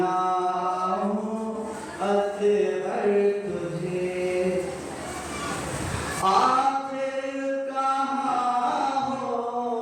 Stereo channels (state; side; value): identical; both; correlation 1.00